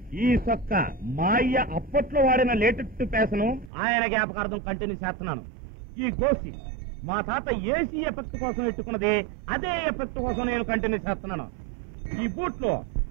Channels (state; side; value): drops out; left; at 3.7 s